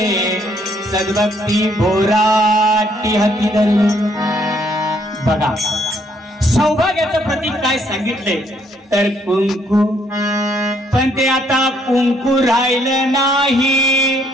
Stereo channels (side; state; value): both; normal; correlation 0.68